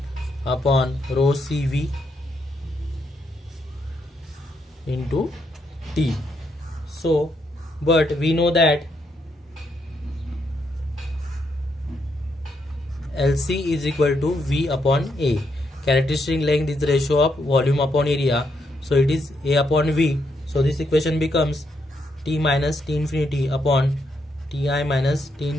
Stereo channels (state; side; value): normal; both; correlation 0.78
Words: upon rho cv into t. So but we know that LC is equal to V upon A. Characteristic length is the ratio of volume upon area. So it is A upon V. So this equation becomes T minus T infinity upon Ti minus T